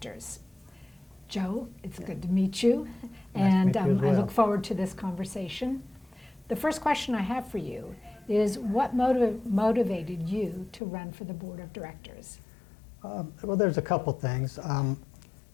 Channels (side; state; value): right; drops out; at 10.8 s